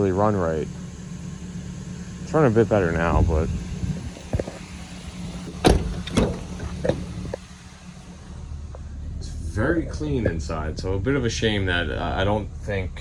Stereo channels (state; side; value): identical; both; correlation 1.00